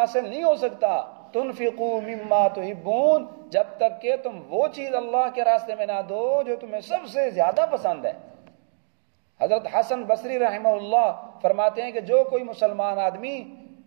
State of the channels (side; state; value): left; silent; digital silence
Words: نہیں ہو سکتا تنفقوا مما تحبون، جب تک کہ تم وہ چیز اللہ کے راستے میں نہ دو جو تمہیں سب سے زیادہ پسند ہے۔ حضرت حسن بصری رحمہ اللہ فرماتے ہیں کہ جو کوئی مسلمان آدمی